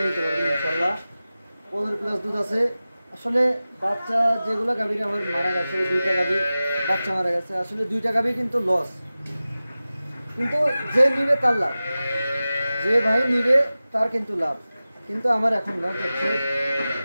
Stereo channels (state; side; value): inverted; both; correlation -0.96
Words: নিতে পারবেন ইনশাল্লাহ। 15 প্লাস দুধ আছে। আসলে বাচ্চা যেগুলো গাভীর আমার মারা গেছে, 2টা গাভী বাচ্চা মারা গেছে। আসলে 2টা গাভী কিন্তু লস, কিন্তু যে নিবে তার লাভ, যে ভাই নিবে তার কিন্তু লাভ। কিন্তু আমার এখন লস হচ্ছে।